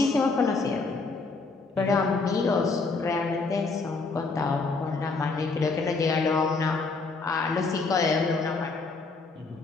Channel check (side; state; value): right; quieter; 4.0 dB